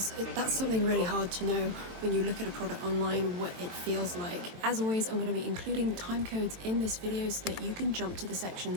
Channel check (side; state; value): left; late; 22 ms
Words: that's something really hard to know when you look at a product online, what it feels like. As always, I'm going to be including time codes in this video so that you can jump to the section